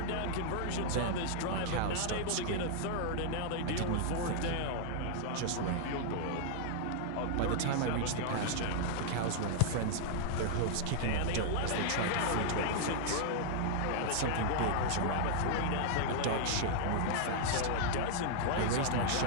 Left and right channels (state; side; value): different; both; correlation -0.01